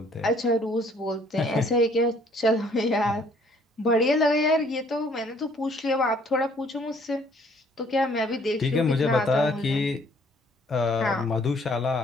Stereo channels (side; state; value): both; normal; correlation 0.61